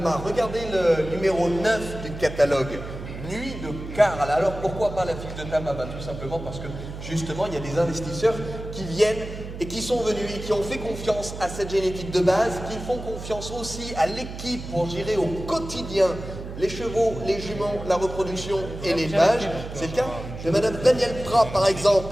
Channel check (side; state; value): right; noise; hum, 10 dB below the sound